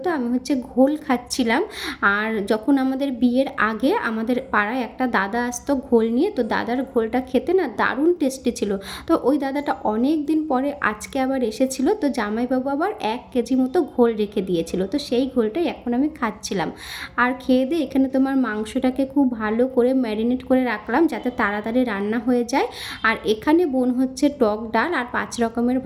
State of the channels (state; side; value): identical; both; correlation 1.00